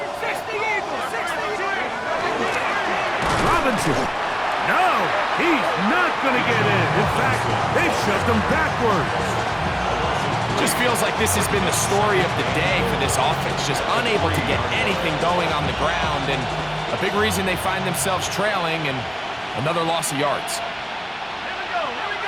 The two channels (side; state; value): both; identical; correlation 1.00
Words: Robinson. No, he's not going to get in. In fact, they've shoved him backwards. Just feels like this has been the story of the day for this offense, just unable to get anything going on the ground, and a big reason they find themselves trailing and another loss of yards.